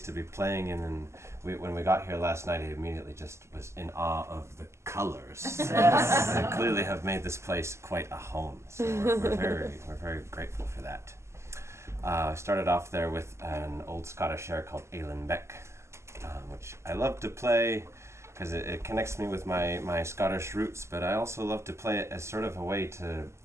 to be playing in, and when we got here last night, I immediately just was in awe of the colors. They clearly have made this place quite a home, so we're very grateful for that. I started off there with an old Scottish air called Ailen Beck, which I love to play because it connects me with my Scottish roots, but I also love to play it as sort of a way to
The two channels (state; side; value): late; left; 0.13 ms